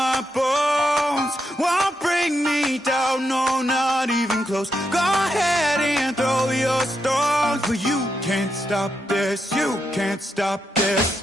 bones. Won't bring me down, no, not even close. Go ahead and throw your stones, but you can't stop this. You can't stop this.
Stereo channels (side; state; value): both; normal; correlation 0.83